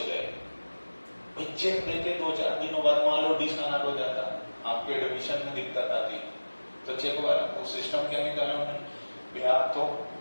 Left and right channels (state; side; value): inverted; both; correlation -1.00